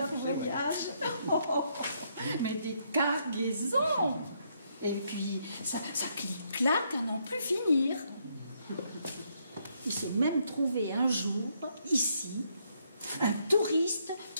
voyage. Mais des cargaisons! Et puis, ça clique-claque à n'en plus finir. Il s'est même trouvé un jour, ici, un touriste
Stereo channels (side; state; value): both; inverted; correlation -0.74